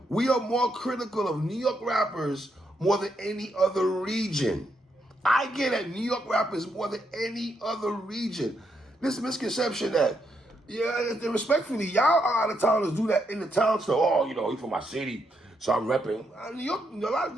We are more critical of New York rappers more than any other region. I get at New York rappers more than any other region. This misconception that, yeah, respectfully, y'all out of towners do that in the town. So, oh, you know, he's from my city, so I'm repping. New York,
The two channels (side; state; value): both; normal; correlation 0.79